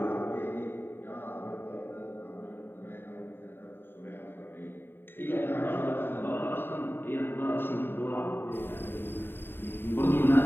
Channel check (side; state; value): right; late; 0.10 ms